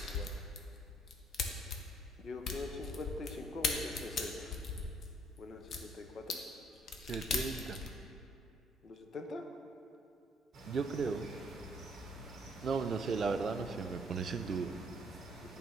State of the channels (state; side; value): normal; both; correlation 0.65